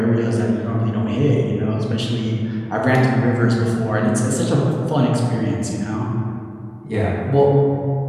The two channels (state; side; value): identical; both; correlation 1.00